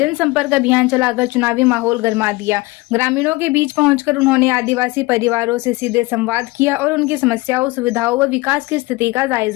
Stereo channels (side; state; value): right; quieter; 21.9 dB